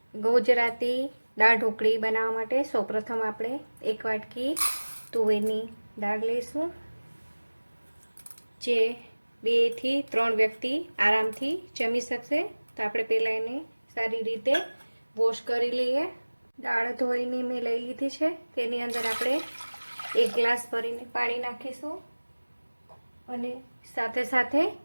ગુજરાતી દાળ ઢોકળી બનાવવા માટે સૌપ્રથમ આપણે એક વાટકી તુવેરની દાળ લઈશું, જે 2 થી 3 વ્યક્તિ આરામથી જમી શકશે. તો આપણે પહેલાં એને સારી રીતે વોશ કરી લઈએ. દાળ ધોઈને મેં લઈ લીધી છે. તેની અંદર આપણે 1 ગ્લાસ ભરીને પાણી નાખીશું અને સાથે સાથે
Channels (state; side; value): inverted; both; correlation -1.00